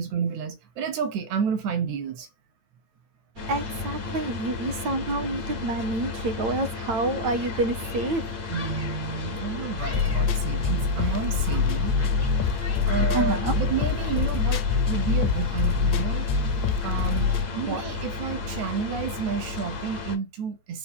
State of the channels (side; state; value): left; late; 8.9 ms